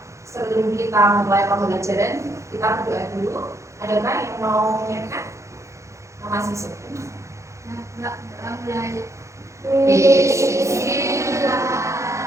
sebelum kita mulai pembelajaran, kita berdoa dulu. Adakah yang mau menyiapkan? Masih sepi? Enggak mulai.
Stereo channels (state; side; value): late; left; 0.14 ms